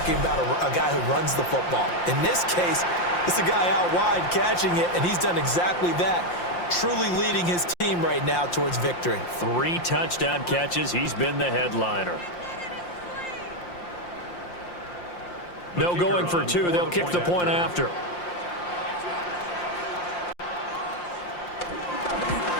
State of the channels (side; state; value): right; late; 5.7 ms